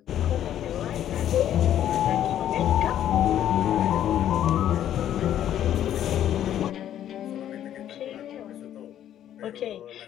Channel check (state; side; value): quieter; right; 11.0 dB